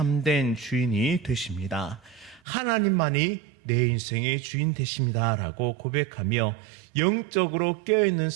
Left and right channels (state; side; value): drops out; left; at 2.4 s